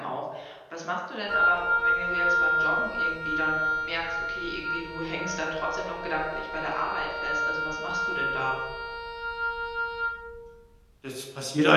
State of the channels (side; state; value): both; identical; correlation 1.00